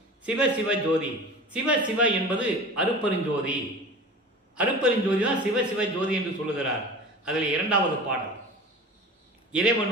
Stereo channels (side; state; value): both; normal; correlation 0.37